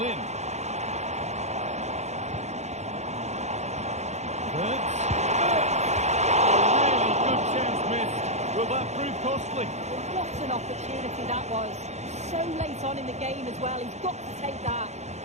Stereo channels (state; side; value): late; left; 0.33 ms